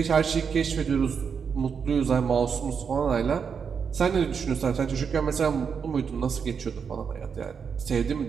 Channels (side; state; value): left; quieter; 6.4 dB